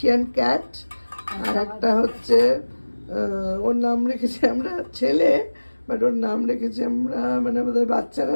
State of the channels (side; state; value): both; inverted; correlation -1.00